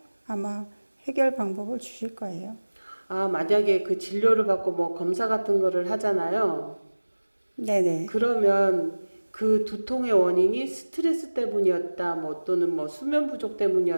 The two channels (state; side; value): inverted; both; correlation -1.00